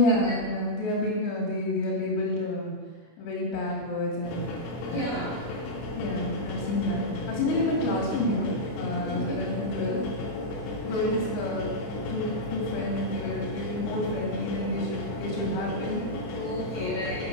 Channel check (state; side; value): late; right; 24 ms